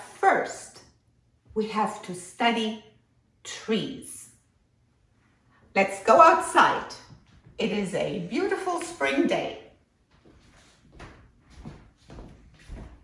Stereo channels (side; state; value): both; identical; correlation 1.00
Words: first, we have to study trees. Let's go outside. It is a beautiful spring day.